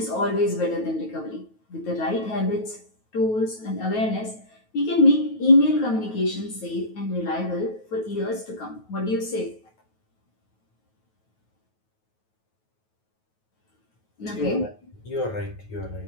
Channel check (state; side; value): late; right; 9.3 ms